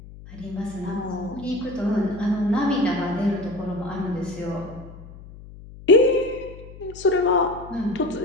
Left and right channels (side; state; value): left; noise; hum, 17 dB below the sound